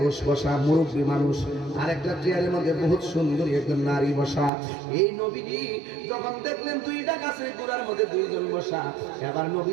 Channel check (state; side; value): drops out; left; at 4.5 s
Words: বসা, মুরব্বী মানুষ, আর একটা চেয়ারের মধ্যে বহুত সুন্দরী একজন নারী বসা। এই নবীজি যখন দেখলেন দুইটা গাছের গোড়ার মধ্যে দুইজন বসা, এবার